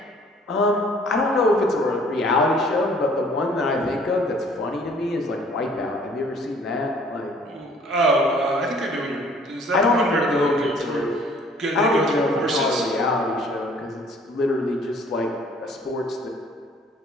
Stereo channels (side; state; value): both; normal; correlation 0.56